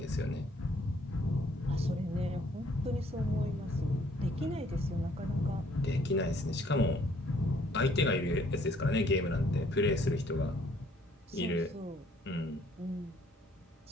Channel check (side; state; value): both; normal; correlation 0.63